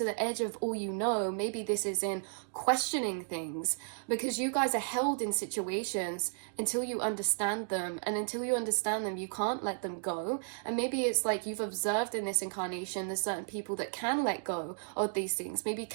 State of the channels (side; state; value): left; silent; digital silence